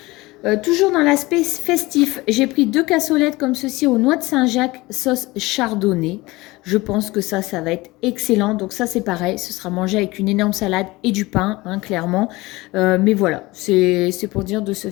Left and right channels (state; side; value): quieter; right; 21.1 dB